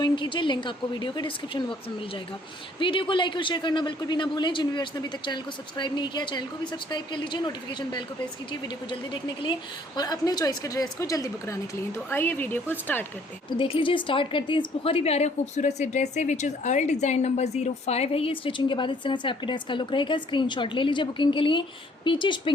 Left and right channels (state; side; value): normal; both; correlation 0.61